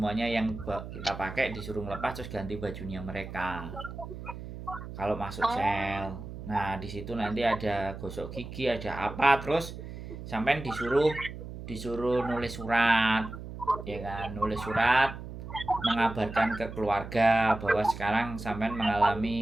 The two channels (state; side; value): noise; right; hum, 10 dB below the sound